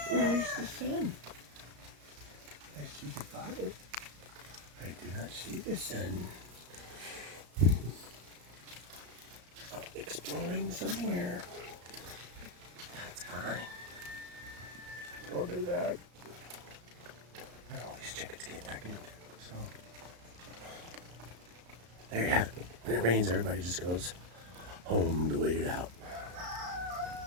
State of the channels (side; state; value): left; late; 34 ms